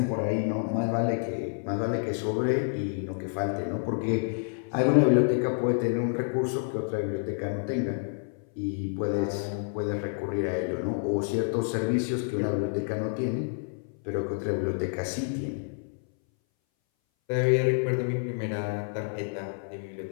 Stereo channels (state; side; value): silent; right; 59 dB below the other